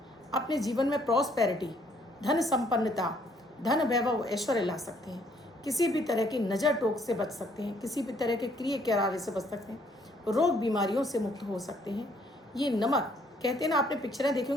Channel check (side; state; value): both; normal; correlation 0.65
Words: अपने जीवन में प्रॉस्पेरिटी, धन संपन्नता, धन वैभव, ऐश्वर्य ला सकते हैं, किसी भी तरह की नज़र टोक से बच सकते हैं, किसी भी तरह के क्रिय करारे से बच सकते हैं, रोग बीमारियों से मुक्त हो सकते हैं। ये नमक, कहते हैं ना, आपने पिक्चरें देखी